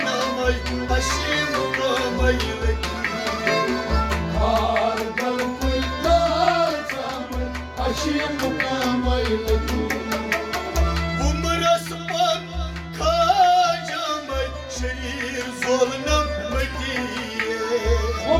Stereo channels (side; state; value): both; identical; correlation 1.00